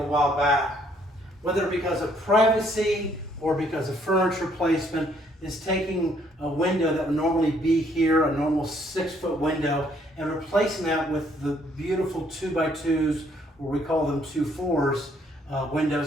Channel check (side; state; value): both; normal; correlation 0.66